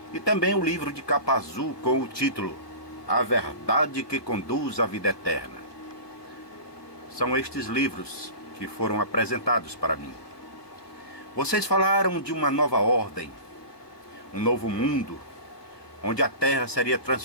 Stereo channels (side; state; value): right; late; 1.2 ms